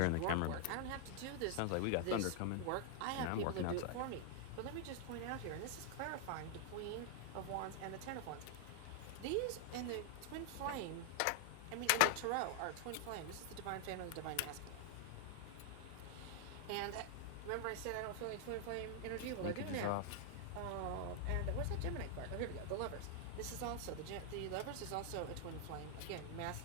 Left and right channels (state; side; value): different; both; correlation 0.00